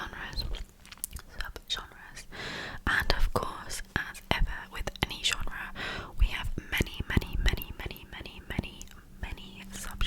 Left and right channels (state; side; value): identical; both; correlation 1.00